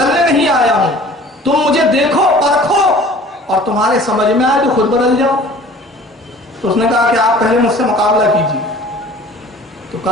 نہیں آیا ہوں، تم مجھے دیکھو، پرکھو، اور تمہارے سمجھ میں آئے تو خود بدل جاؤ۔ تو اس نے کہا کہ آپ پہلے مجھ سے مقابلہ کیجیے۔ تو تو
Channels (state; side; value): normal; both; correlation 0.47